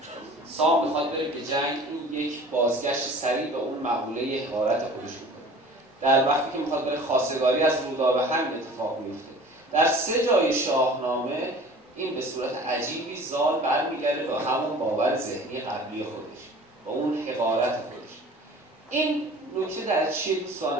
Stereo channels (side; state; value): both; normal; correlation 0.44